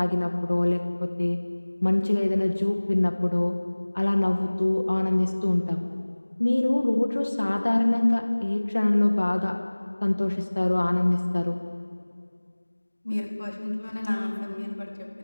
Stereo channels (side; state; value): both; inverted; correlation -1.00